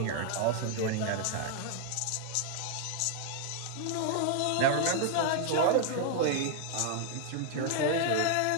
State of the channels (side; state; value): both; different; correlation 0.00